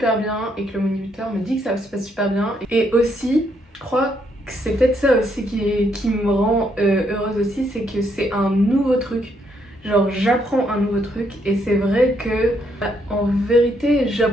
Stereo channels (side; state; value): both; normal; correlation 0.74